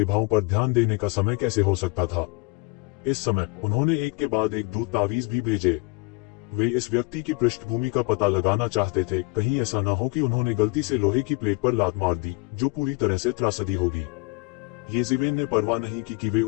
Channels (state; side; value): quieter; right; 28.3 dB